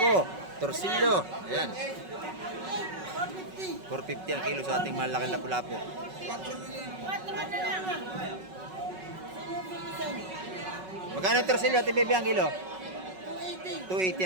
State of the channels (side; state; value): left; late; 5.4 ms